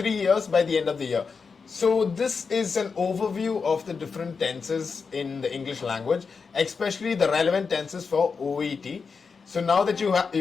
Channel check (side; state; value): right; quieter; 5.2 dB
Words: years by the end of the year. So this is an overview of the different tenses in the English language, especially the relevant tenses for OET. So now that